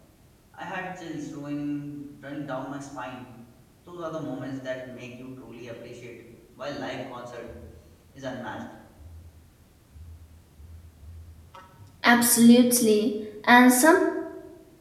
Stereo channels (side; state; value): both; identical; correlation 1.00